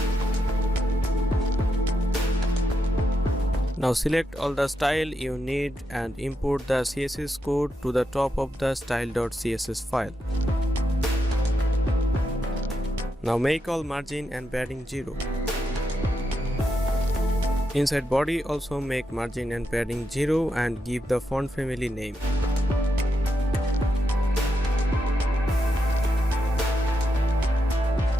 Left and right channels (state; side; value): normal; both; correlation 0.84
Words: Now select all the style you need and import the CSS code to the top of the style.css file. Now make all margin and padding 0. Inside body also make margin and padding 0 and give the font family name.